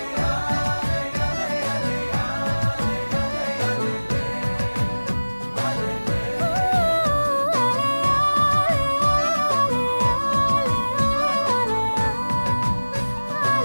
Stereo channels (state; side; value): inverted; both; correlation -1.00